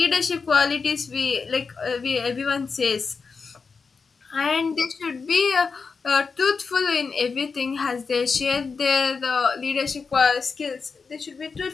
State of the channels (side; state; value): right; quieter; 5.0 dB